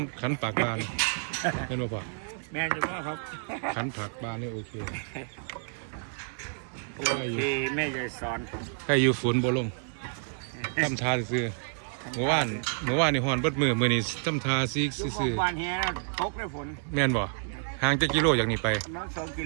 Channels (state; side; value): silent; left; digital silence